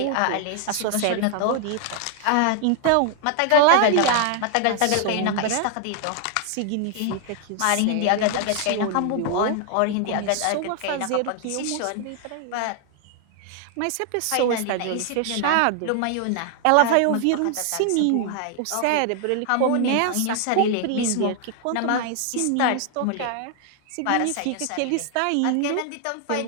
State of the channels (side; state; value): both; different; correlation 0.00